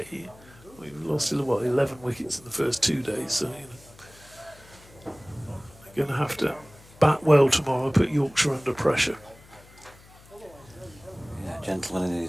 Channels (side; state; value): left; noise; hum, 24 dB below the sound